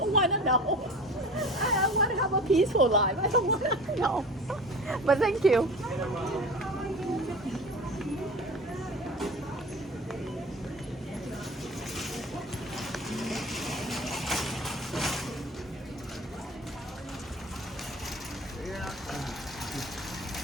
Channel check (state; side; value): normal; both; correlation 0.37